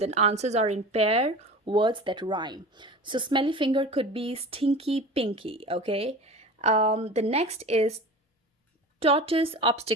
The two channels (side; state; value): both; normal; correlation 0.35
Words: answers are in pair words that rhyme. So smelly finger could be stinky pinky. Okay, the next is tortoise